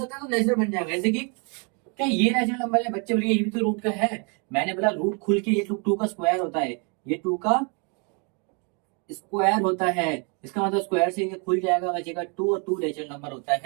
है तो नेचुरल बन जाएगा। जैसे कि क्या ये नेचुरल नंबर है? बच्चे बोलिए ये भी तो रूट का है। मैंने बोला रूट खुल के ये टू का स्क्वायर होता है, ये टू का स्क्वायर होता है। इसका मतलब स्क्वायर से ये खुल जाएगा, बचेगा टू, और टू नेचुरल नंबर होता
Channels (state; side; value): quieter; left; 35.7 dB